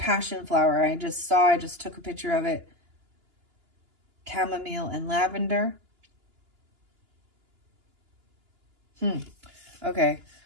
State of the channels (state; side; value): late; left; 2.9 ms